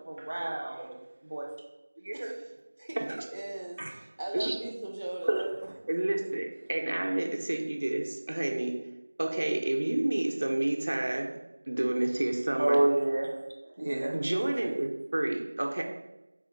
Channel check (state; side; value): inverted; both; correlation -1.00